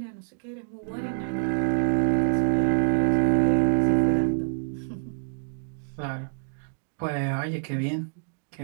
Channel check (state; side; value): silent; left; digital silence